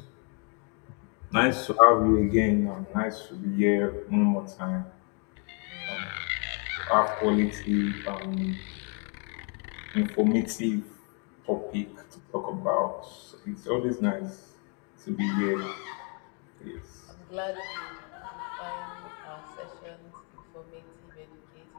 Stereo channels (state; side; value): quieter; right; 37.9 dB